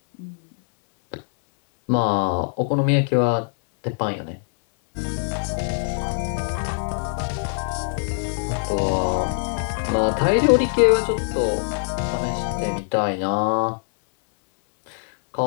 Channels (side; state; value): right; silent; 61 dB below the other